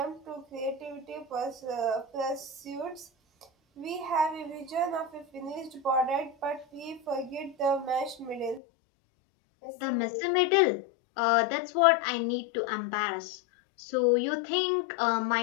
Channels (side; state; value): right; drops out; at 8.6 s